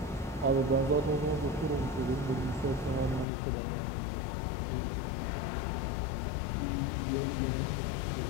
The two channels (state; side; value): drops out; right; at 3.2 s